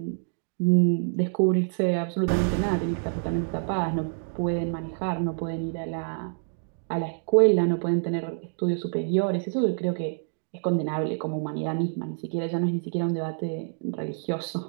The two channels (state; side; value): silent; left; digital silence